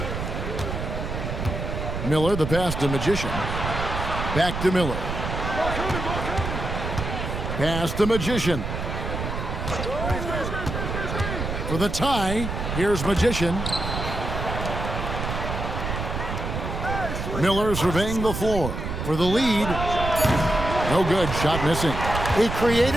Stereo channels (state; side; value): noise; right; rumble, 4 dB below the sound